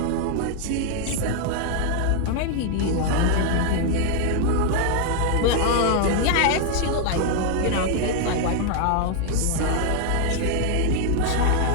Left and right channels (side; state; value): both; different; correlation 0.00